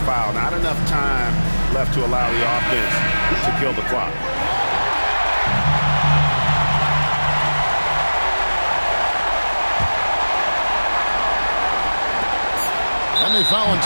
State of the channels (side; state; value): both; inverted; correlation -1.00